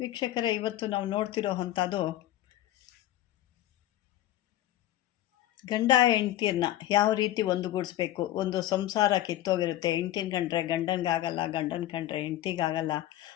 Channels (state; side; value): quieter; right; 13.9 dB